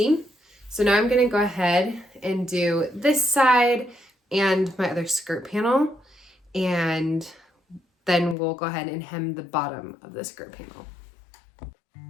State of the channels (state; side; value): drops out; right; at 8.3 s